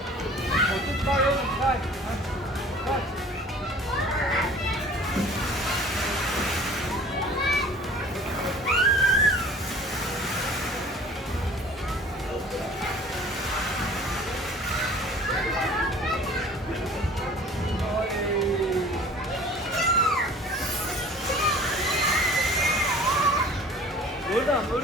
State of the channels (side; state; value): both; normal; correlation 0.47